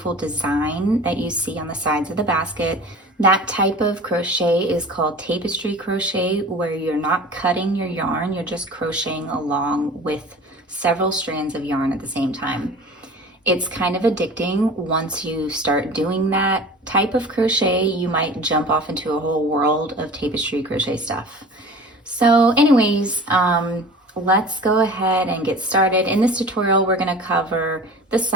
design that you see on the sides of the basket. That type of crochet is called tapestry crochet, where you're not cutting your yarn, you're just crocheting along with several strands of yarn at the same time. It's kind of addicting. Once you start doing that type of crochet, you might jump off into a whole world of tapestry crochet stuff. So anyways, let's go ahead and get started. In this tutorial, we're going to cover the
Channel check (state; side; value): normal; both; correlation 0.40